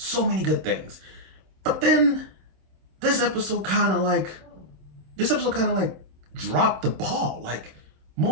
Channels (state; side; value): late; left; 27 ms